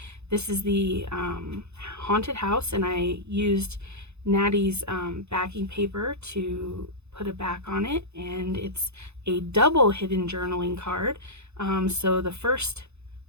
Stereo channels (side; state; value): left; late; 0.81 ms